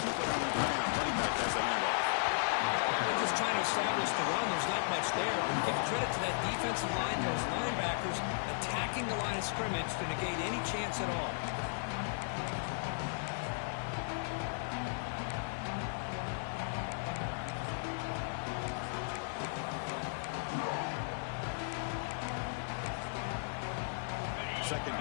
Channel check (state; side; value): silent; right; digital silence